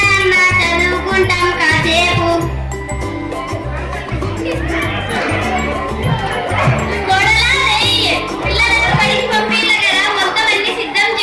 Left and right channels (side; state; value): both; identical; correlation 1.00